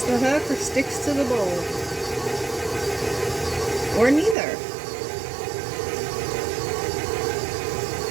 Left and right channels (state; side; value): drops out; left; at 4.4 s